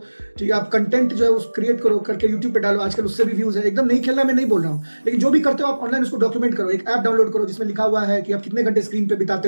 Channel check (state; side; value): inverted; both; correlation -1.00